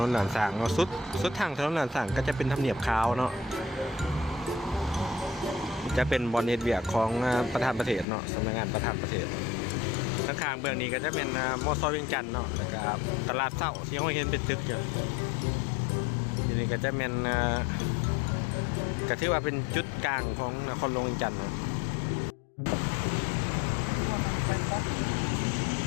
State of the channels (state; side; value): drops out; right; at 8.1 s